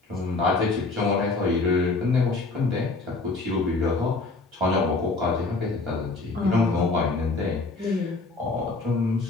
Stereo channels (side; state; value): right; quieter; 3.6 dB